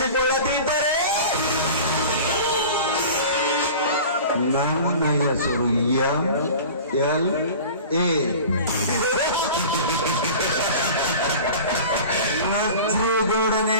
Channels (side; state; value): both; inverted; correlation -0.38